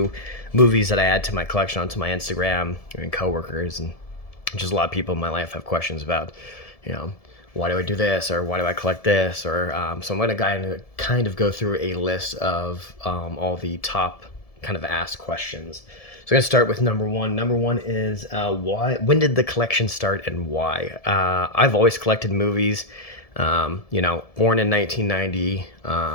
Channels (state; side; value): late; right; 1.7 ms